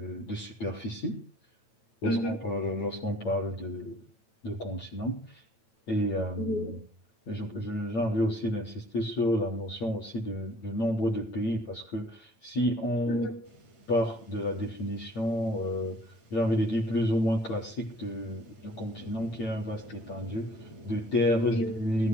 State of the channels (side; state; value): right; late; 9.0 ms